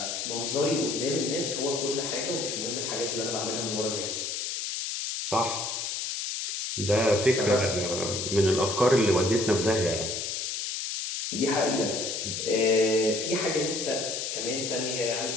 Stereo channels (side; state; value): left; noise; hiss, 3 dB below the sound